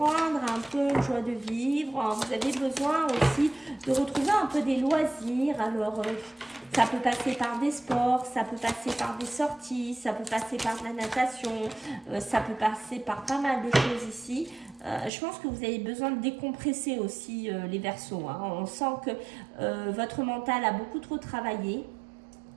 un peu joie de vivre. Vous avez besoin aussi de retrouver un peu des loisirs. Alors, ça peut passer par des sports, ça peut passer par des sorties, ça peut passer par de la natation, ça peut passer par pas mal de choses ici. Je pense que vous avez besoin de décompresser aussi les Verseaux. Hein. On sent que votre mental a beaucoup trop travaillé.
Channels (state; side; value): drops out; left; at 15.1 s